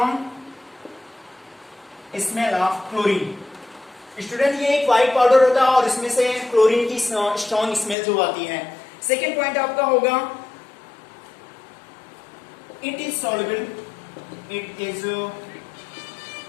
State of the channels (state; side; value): drops out; right; at 8.0 s